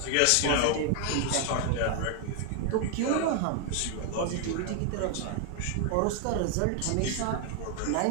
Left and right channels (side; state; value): both; different; correlation 0.00